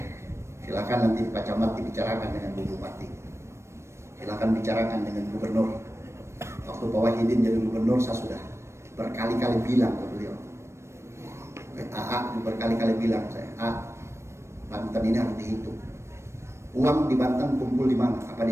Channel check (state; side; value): late; left; 0.13 ms